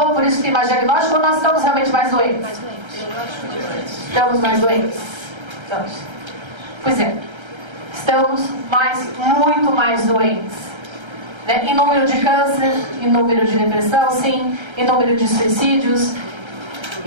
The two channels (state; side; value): late; left; 1.3 ms